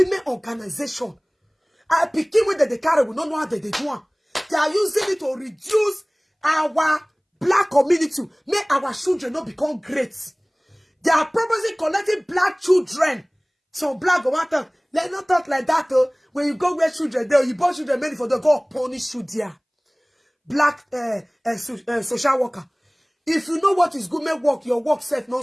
organization. I picking with the carry, we don't know how they do it. They are using it to reduce our black community, make our children not become great. They are purposely collecting black children. So black go matter. Let's not talk like that though. When you go where children there, you born children many for the go punish you there. Black social worker. If you know what is good, make work, your work self not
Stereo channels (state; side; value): identical; both; correlation 1.00